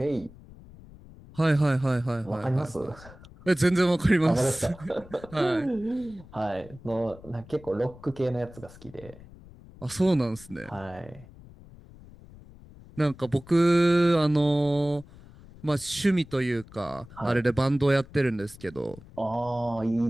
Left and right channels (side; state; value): left; noise; rumble, 20 dB below the sound